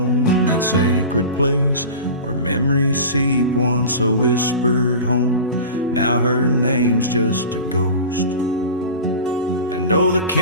in that sacred place where memories seep, once a whispered home. Now her name's just a ghost. And oh, the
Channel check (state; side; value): inverted; both; correlation -0.32